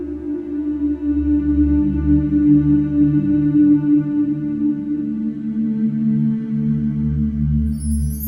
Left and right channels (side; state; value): both; identical; correlation 1.00